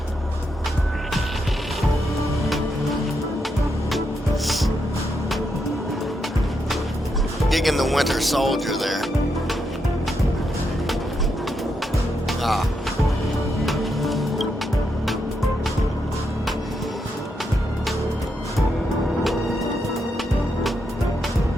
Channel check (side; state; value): both; normal; correlation 0.82